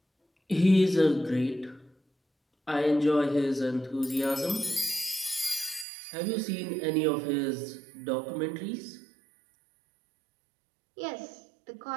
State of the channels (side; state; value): left; drops out; at 5.9 s